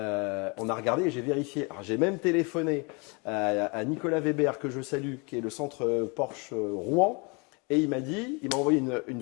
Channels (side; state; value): right; quieter; 31.1 dB